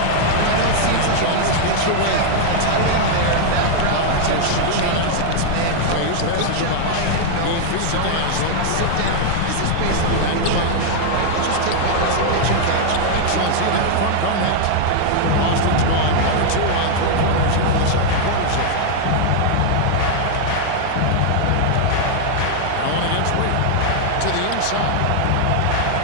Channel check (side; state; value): both; different; correlation 0.00